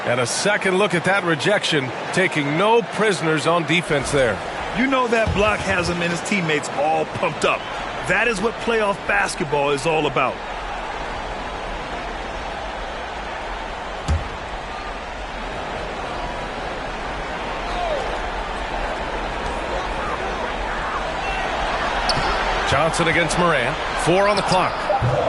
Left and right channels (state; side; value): identical; both; correlation 1.00